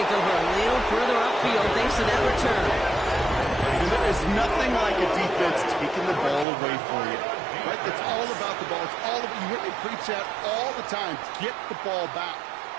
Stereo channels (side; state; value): left; drops out; at 6.5 s